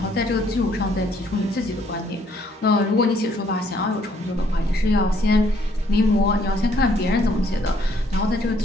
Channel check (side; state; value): both; normal; correlation 0.66